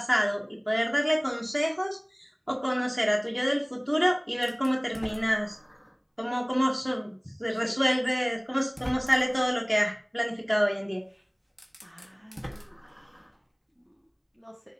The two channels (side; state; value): both; identical; correlation 1.00